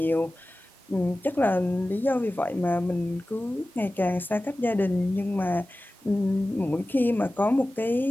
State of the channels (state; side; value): normal; both; correlation 0.96